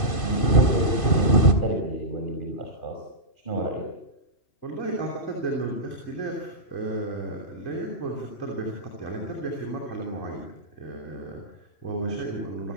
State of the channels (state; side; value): late; right; 2.5 ms